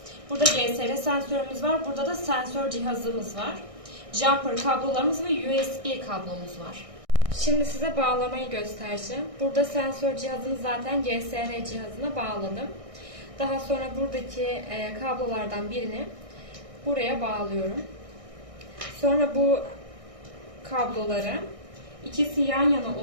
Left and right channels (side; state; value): left; late; 1.6 ms